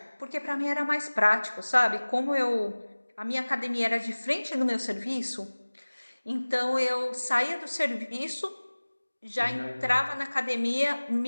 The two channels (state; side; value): inverted; both; correlation -1.00